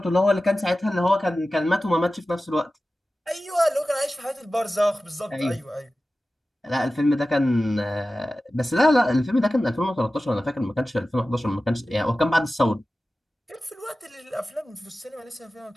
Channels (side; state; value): both; normal; correlation 0.95